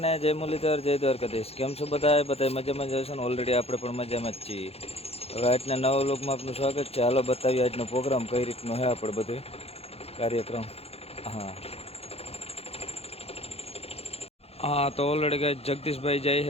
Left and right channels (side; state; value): right; late; 0.29 ms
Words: ને જય મુરલીધર, જય દ્વારકાધીશ. કેમ છો બધા? બધા મજામાં જ હશો ને? ઓલરેડી આપણે પણ મજામાં જ છીએ. હવે આજના નવા વ્લોગમાં આપનું સ્વાગત છે. હાલો બતાવીએ આજનો પ્રોગ્રામ કઈ રીતનો છે આપણે બધું કાર્યક્રમ. હા હા, તો ઓલરેડી ગાય જગદીશભાઈ જાય